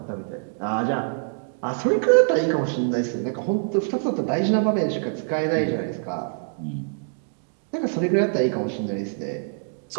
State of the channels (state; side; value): silent; left; digital silence